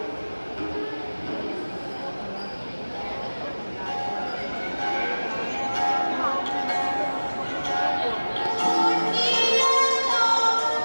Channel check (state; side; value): inverted; both; correlation -1.00